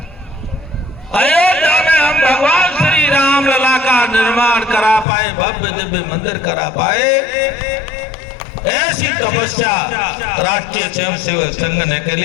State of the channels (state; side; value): drops out; right; at 5.1 s